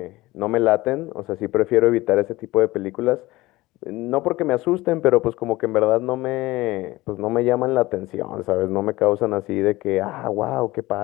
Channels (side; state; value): right; quieter; 19.3 dB